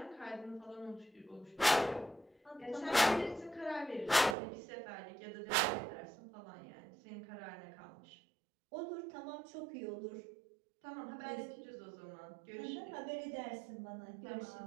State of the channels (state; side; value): drops out; left; at 4.4 s